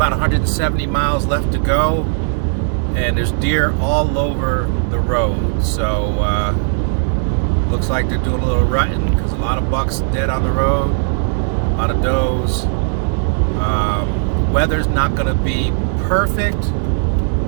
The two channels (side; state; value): left; silent; digital silence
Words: 170 miles left to go, and there's deer all over the road. So looks like they're doing a little rutting because a lot of bucks dead on the road, a lot of does. Weather's not going to be perfect,